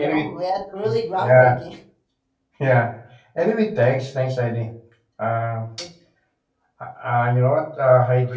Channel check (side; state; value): both; identical; correlation 1.00